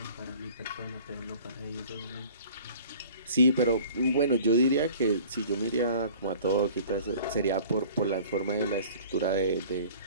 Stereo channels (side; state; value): both; inverted; correlation -0.47